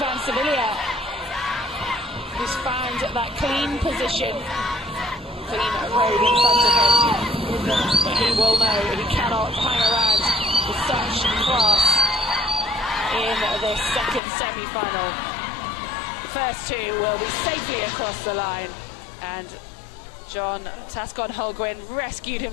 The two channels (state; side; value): drops out; right; at 14.2 s